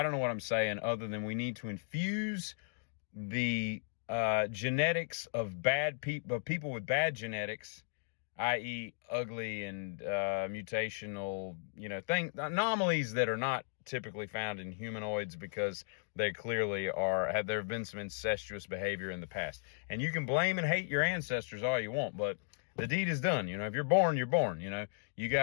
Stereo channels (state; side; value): silent; right; digital silence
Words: don't know what I'm saying other than we need to infuse the genetics of bad people, people with bad genetics, i.e. ugly and mutational, anomalies that are not typically found in humanoids because they clearly there have been some incestuous behavior in the past. And you can blame and hate your ancestors all you want, but the deed is done. If you're born, you're born. You